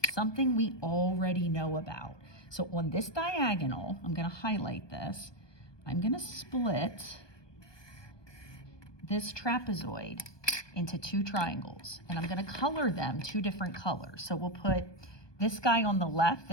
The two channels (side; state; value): right; late; 1.2 ms